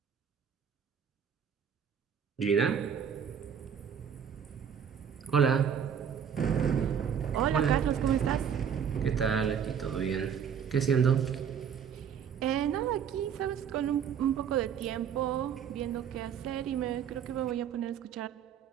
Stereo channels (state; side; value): quieter; left; 7.9 dB